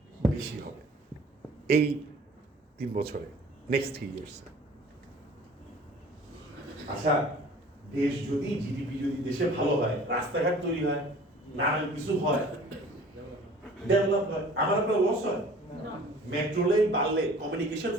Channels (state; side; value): normal; both; correlation 0.48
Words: বেশি হবে এই 3 বছরে, নেক্সট 3 ইয়ার্স। আচ্ছা, দেশ যদি, জিডিপি যদি দেশে ভালো হয়, রাস্তাঘাট তৈরি হয়, নানান কিছু হয়, ডেভেলপ হয়, আমার আপনার লস হয়? মেট্রো লেন বাড়লে, কমিউনিকেশন